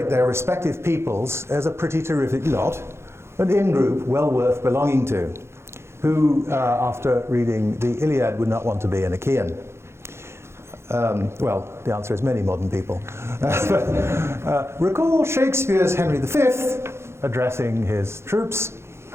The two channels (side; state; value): left; late; 0.13 ms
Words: their respective peoples as a pretty terrific lot, an in-group well worth belonging to. Who, after reading the Iliad, would not want to be an Achaean? Well, the answer is many modern people. Recall Shakespeare's Henry V addressing his troops,